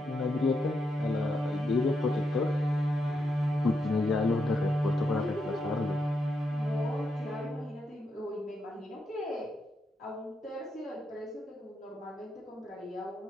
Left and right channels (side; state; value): both; normal; correlation 0.82